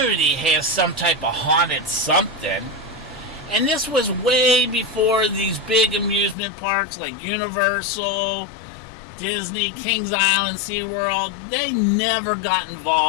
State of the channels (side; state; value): right; drops out; at 6.4 s